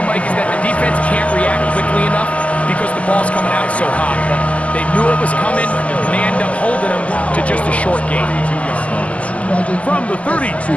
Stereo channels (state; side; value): late; right; 0.067 ms